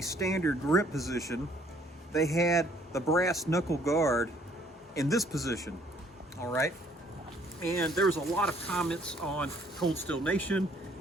standard grip position, they had the brass knuckle guard in this position. All right. And there was a lot of comments on Cold Steel Nation,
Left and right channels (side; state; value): both; normal; correlation 0.62